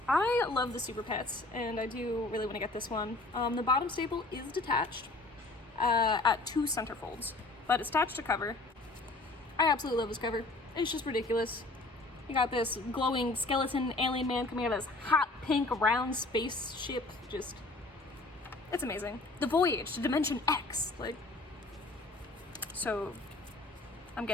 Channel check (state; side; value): quieter; right; 3.0 dB